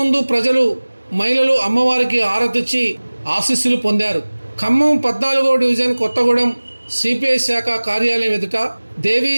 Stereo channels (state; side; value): inverted; both; correlation -1.00